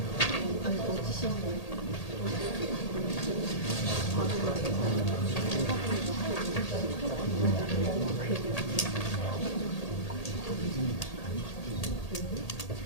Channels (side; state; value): right; late; 1.8 ms